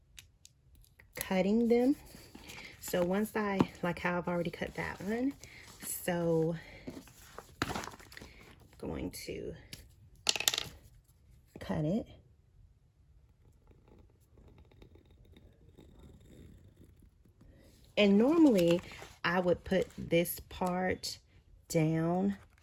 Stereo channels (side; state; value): both; identical; correlation 1.00